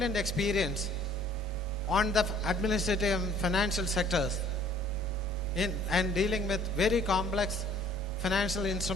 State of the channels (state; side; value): noise; right; rumble, 15 dB below the sound